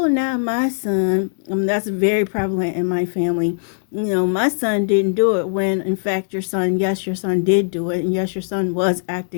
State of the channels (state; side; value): silent; right; digital silence